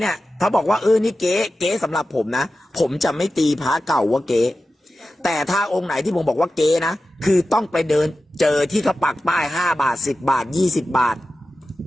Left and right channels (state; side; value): normal; both; correlation 0.93